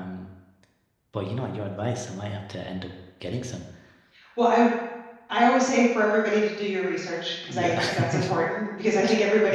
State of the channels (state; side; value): identical; both; correlation 1.00